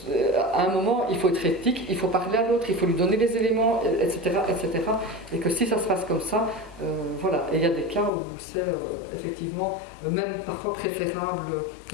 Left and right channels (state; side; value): drops out; right; at 8.1 s